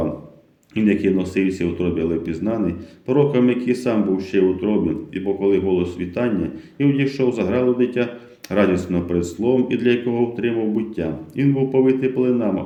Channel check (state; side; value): identical; both; correlation 1.00